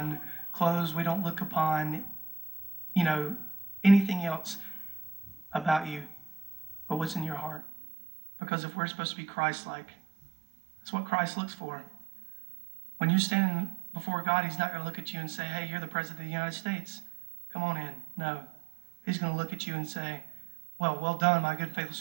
clothes. We don't look upon, anything else about you but what's in your heart. Because if we're supposed to be Christ-like, that's what Christ looks for. When you're standing before God, He's not going to look at you and say, hey, you're the President of the United States. Come on in. No. He's going to look at you and say, well done, my good, faithful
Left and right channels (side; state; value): left; drops out; at 7.6 s